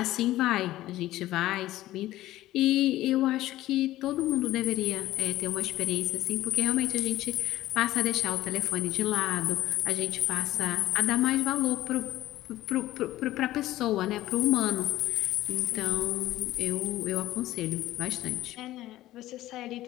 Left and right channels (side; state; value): right; quieter; 15.4 dB